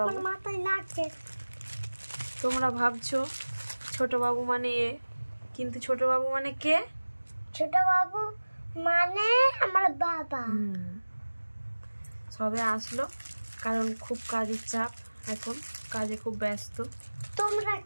মাথায় লাগছে। তোমরা ভাবছো ছোট বাবু মানে এ, কিন্তু ছোট বাবু মানে কে? ছোট বাবু মানে আমার বাবা। সবে আসলো কারণ খুব কাজের চাপ, এখন কাজে খুব ব্যস্ত। তোমরা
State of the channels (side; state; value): both; inverted; correlation -1.00